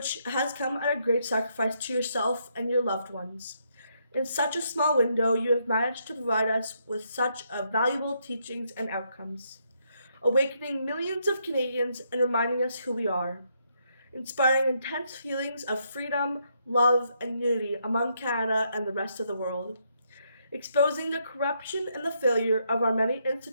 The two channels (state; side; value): inverted; both; correlation -0.76